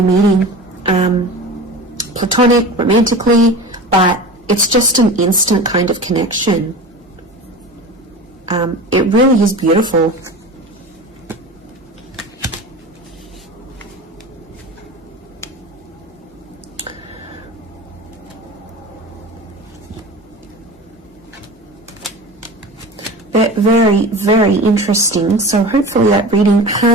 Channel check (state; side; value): normal; both; correlation 0.33